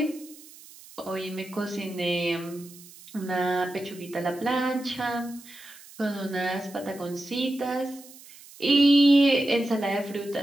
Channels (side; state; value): right; noise; hiss, 20 dB below the sound